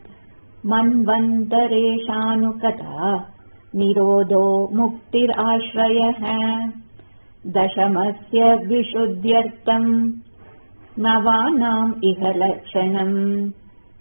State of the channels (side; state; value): both; inverted; correlation -1.00